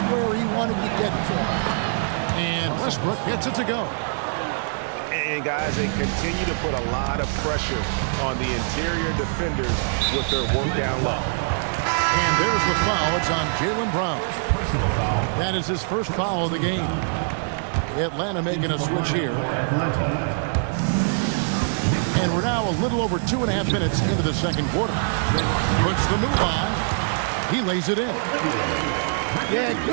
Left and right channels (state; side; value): silent; left; 63 dB below the other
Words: where he wanted to get to. And Westbrook gets it to go. And, guys, they continue to put a lot of pressure on the interior defenders with their work down low. And there's the foul. It's on Jaylen Brown. Personal foul. That is his first foul of the game. Atlanta making a switch here. And we're now a little over 2.5 minutes into the second quarter. Puts the move on. He lays it in. Yeah,